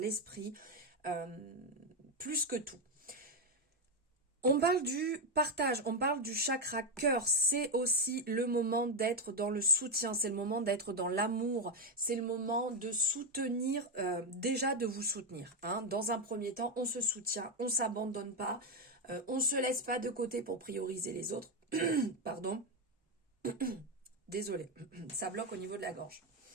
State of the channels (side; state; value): both; normal; correlation 0.06